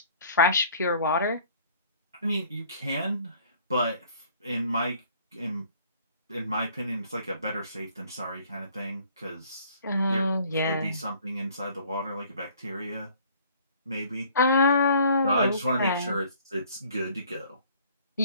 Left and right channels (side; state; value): both; inverted; correlation -0.56